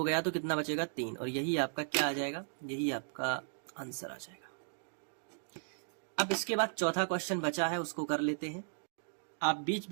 गया तो कितना बचेगा, 3, और यही आपका क्या आ जाएगा, यही आपका आंसर आ जाएगा। अब इसके बाद चौथा क्वेश्चन बचा है, उसको कर लेते हैं। आप बीच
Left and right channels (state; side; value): silent; left; digital silence